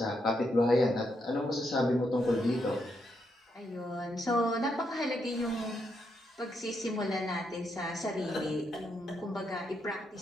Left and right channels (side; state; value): both; normal; correlation 0.80